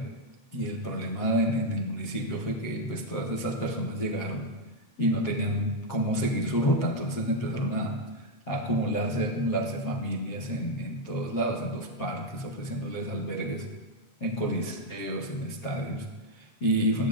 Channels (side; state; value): right; late; 7.6 ms